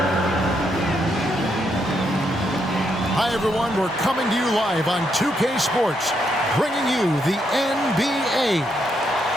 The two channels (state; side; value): normal; both; correlation 0.77